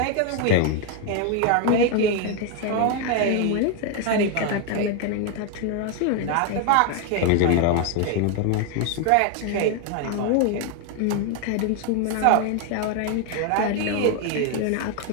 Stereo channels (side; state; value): both; different; correlation 0.01